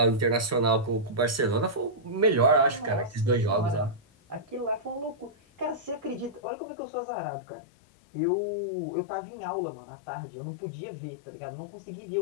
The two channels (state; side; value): drops out; right; at 6.4 s